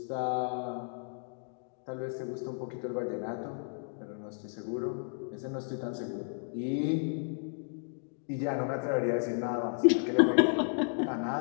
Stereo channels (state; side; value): silent; right; 56 dB below the other